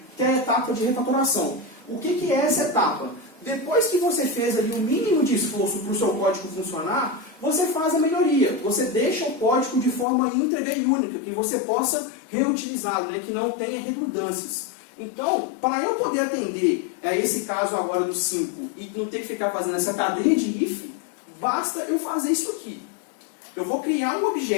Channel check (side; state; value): right; drops out; at 10.1 s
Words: que é a etapa de refatoração. O que é essa etapa? Depois que você fez ali o mínimo de esforço para o seu código funcionar, você faz a melhoria. Você deixa o código de forma íntegra e única, que você possa reutilizá-lo, né? Que não tenha redundâncias. Então, para eu poder atender esse caso agora do 5 e não ter que ficar fazendo essa cadeia de if, basta eu fazer isso aqui. Eu vou criar um